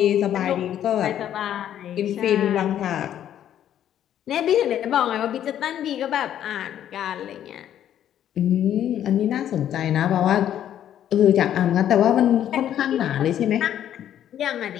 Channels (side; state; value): right; quieter; 10.7 dB